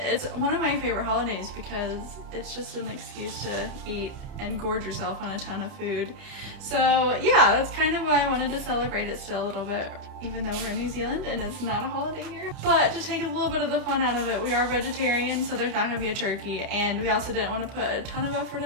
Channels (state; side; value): late; left; 30 ms